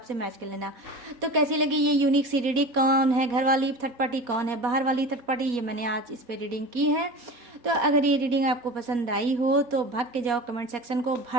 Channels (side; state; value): left; late; 4.2 ms